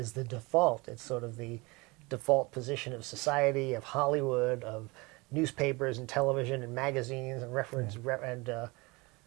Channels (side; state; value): left; quieter; 25.3 dB